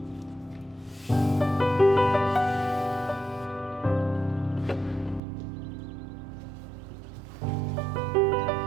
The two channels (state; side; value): drops out; left; at 5.2 s